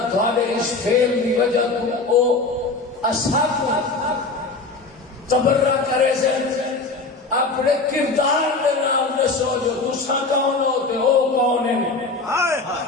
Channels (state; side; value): quieter; right; 3.7 dB